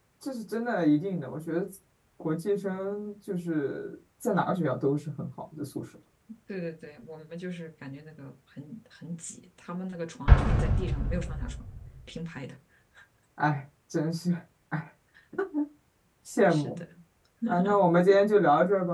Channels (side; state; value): both; identical; correlation 1.00